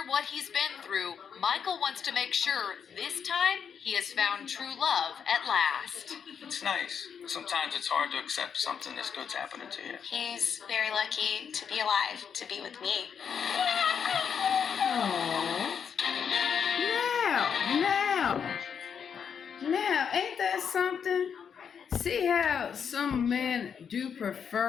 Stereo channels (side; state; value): right; quieter; 7.2 dB